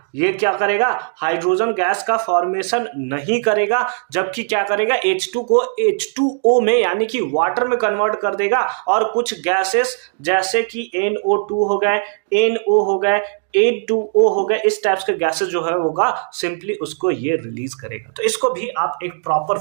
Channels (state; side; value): silent; left; digital silence